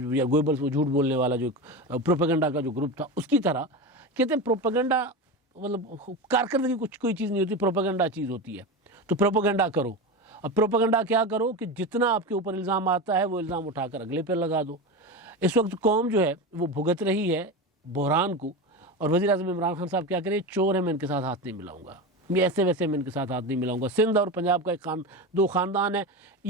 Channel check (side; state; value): both; normal; correlation 0.22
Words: یا گوئبلز وہ جھوٹ بولنے والا جو پروپیگنڈا کا جو گروپ تھا، اس کی طرح کہتے ہیں پروپیگنڈا مطلب کارکردگی کوئی چیز نہیں ہوتی، پروپیگنڈا چیز ہوتی ہے. تو پروپیگنڈا کرو. اب پروپیگنڈا کیا کرو کہ جتنا آپ کے اوپر الزام آتا ہے وہ الزام اٹھا کر اگلے پہ لگا دو. اس وقت قوم جو ہے وہ بھگت رہی ہے بحران کو، اور وزیر اعظم عمران خان صاحب کیا کریں، چور ہے میں ان کے ساتھ ہاتھ نہیں ملاؤں گا، یہ ایسے ویسے میں ان کے ساتھ ہاتھ نہیں ملاؤں گا. سندھ اور پنجاب کا ایک دو خاندان ہے،